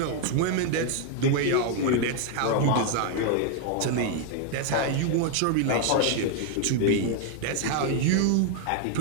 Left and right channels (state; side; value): different; both; correlation 0.00